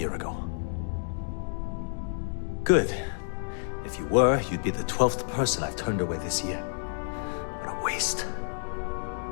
ago. Good. If you were, you'd be the 12th person I've turned away this year. What a waste.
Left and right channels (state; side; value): silent; right; digital silence